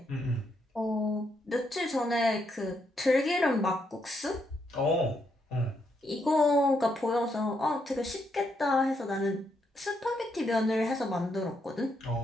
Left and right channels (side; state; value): both; normal; correlation 0.78